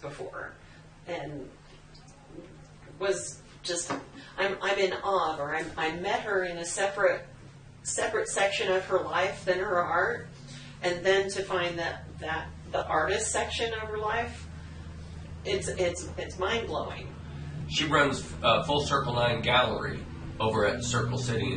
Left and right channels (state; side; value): identical; both; correlation 1.00